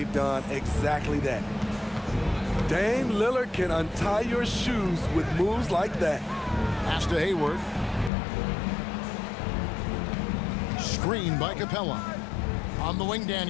done exactly that. Dame Lillard can untie your shoes with moves like that. Pass to Hayward. Screen by Capella. On the wing,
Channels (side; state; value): right; drops out; at 8.1 s